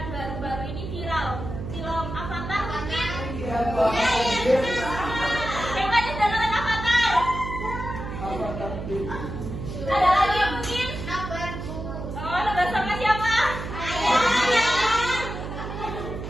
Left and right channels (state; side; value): noise; right; hum, 7 dB below the sound